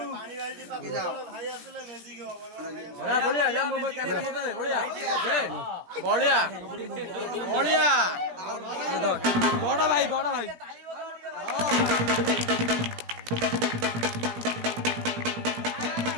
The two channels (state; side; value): late; left; 17 ms